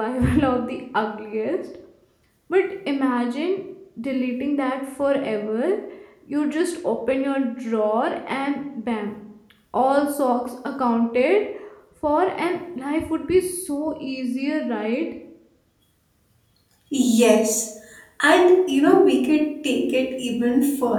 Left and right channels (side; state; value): both; identical; correlation 1.00